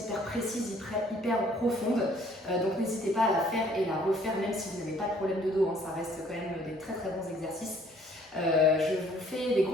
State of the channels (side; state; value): both; normal; correlation 0.60